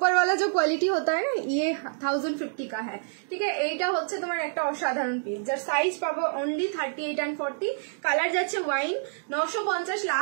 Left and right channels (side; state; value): left; silent; digital silence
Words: वाला जो क्वालिटी होता है ना, ये 1050 का है। ठीक है, এইটা হচ্ছে তোমার একটা অসাধারণ পিস, যার সাইজ পাবো অনলি 38 and 40। কালার যাচ্ছে ওয়াইন। 950